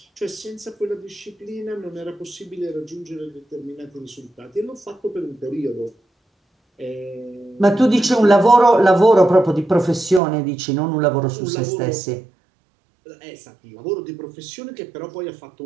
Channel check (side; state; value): left; drops out; at 10.2 s